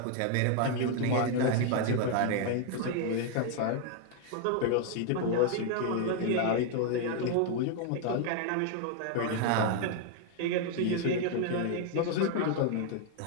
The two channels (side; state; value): both; different; correlation 0.00